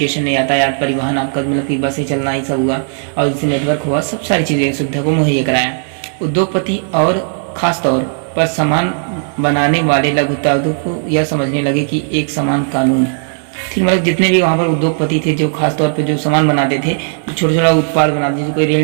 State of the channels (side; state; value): left; silent; digital silence